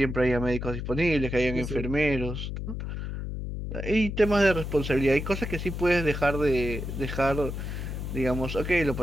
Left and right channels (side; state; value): left; noise; hum, 5 dB below the sound